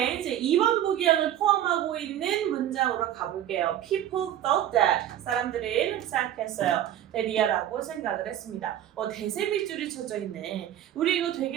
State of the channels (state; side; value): quieter; left; 11.5 dB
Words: 이제 2번 보기형을 포함하고 있는 문장으로 가볼게요. People thought that. 사람들은 생각했어요. that이라고 생각을 했습니다. 대세 밑줄이 쳐져 있네. 우리 이거